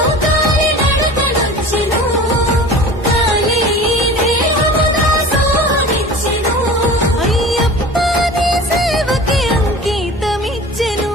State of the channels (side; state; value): both; normal; correlation 0.39